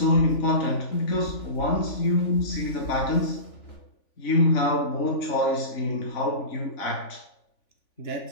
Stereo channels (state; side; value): late; right; 3.5 ms